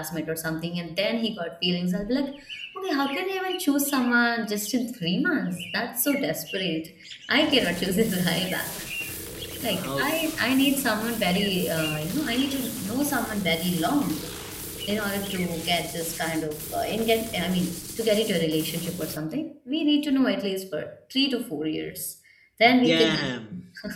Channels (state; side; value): identical; both; correlation 1.00